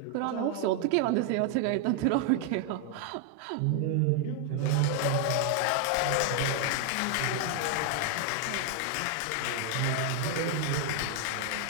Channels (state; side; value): different; both; correlation 0.00